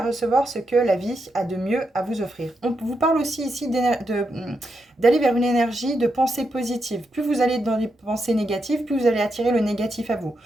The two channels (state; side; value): normal; both; correlation 0.84